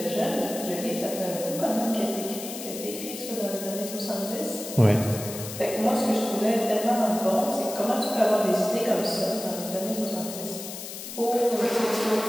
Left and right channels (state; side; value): noise; left; hiss, 9 dB below the sound